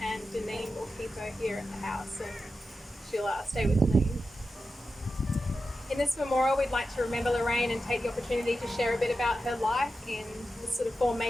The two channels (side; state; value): both; normal; correlation 0.91